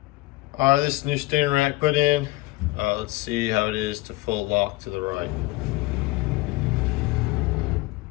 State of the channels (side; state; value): right; quieter; 20.4 dB